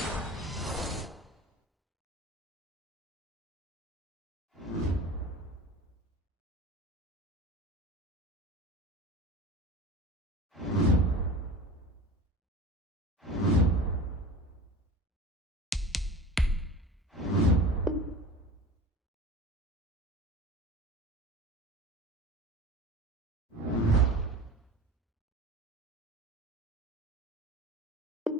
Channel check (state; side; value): normal; both; correlation 0.35